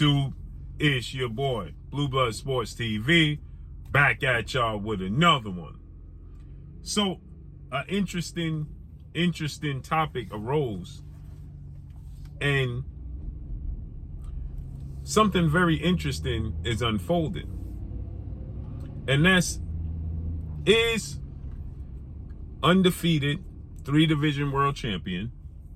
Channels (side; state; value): both; identical; correlation 1.00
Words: It's your boy, Blue Blood Sports TV, back at y'all with another one. So, an interesting topic arose, and something very interesting is unfolding. And that's, is undefeated 3-division world champion,